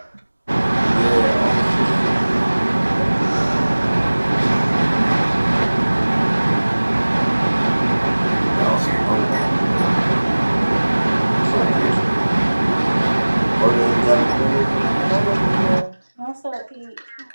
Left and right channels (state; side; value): inverted; both; correlation -1.00